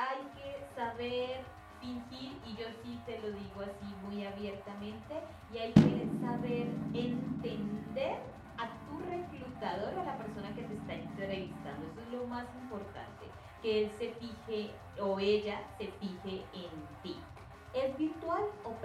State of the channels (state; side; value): identical; both; correlation 1.00